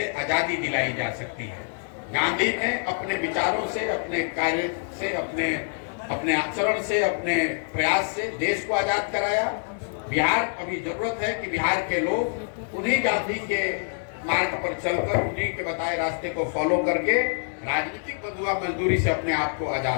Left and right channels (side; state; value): right; silent; 61 dB below the other